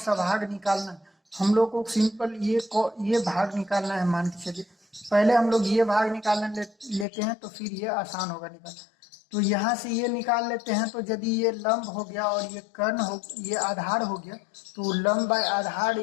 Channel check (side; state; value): right; drops out; at 7.1 s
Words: भाग निकालना है, हम लोग को सिंपल ये भाग निकालना है। मान के चलिए पहले हम लोग ये भाग निकालने लेते हैं तो फिर ये आसान होगा निकालना। तो यहाँ से ये निकाल लेते हैं। तो यदि ये लंब हो गया और ये कर्ण हो, ये आधार हो गया, तो लंब बाय आधार